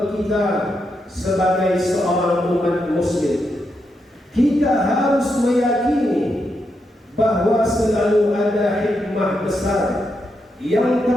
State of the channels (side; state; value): both; normal; correlation 0.83